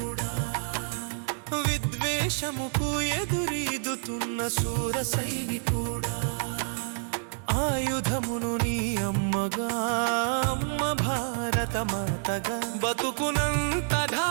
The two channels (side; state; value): left; silent; 59 dB below the other